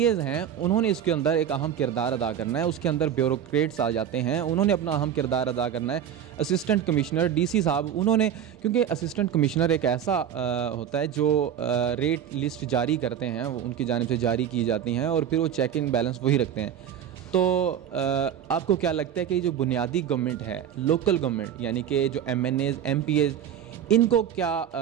हैं उन्होंने इसके अंदर एक अहम किरदार अदा करना है। उसके अंदर ब्यूरोक्रेट्स आ जाते हैं, उन्होंने अपना अहम किरदार अदा करना है। असिस्टेंट कमिश्नर DC साहब उन्होंने, क्योंकि असिस्टेंट कमिश्नर एक ऐसा होता है जो रेट लिस्ट जारी करते हैं, वो उनकी जानिब से जारी की जाती हैं और फिर वो चेक इन बैलेंस वही रखते हैं। तो आपको क्या लगता है कि जो बुनियादी गवर्नमेंट है, लोकल गवर्नमेंट, यानी कि जो MNAs MPAs, इनको क्या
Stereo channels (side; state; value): left; quieter; 9.3 dB